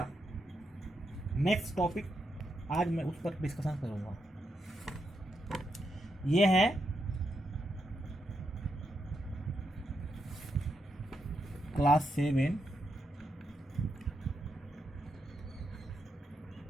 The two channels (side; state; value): both; normal; correlation 0.82